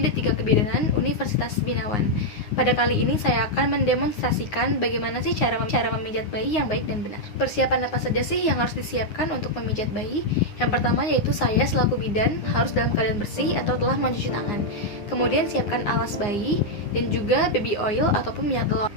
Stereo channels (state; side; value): late; right; 9.6 ms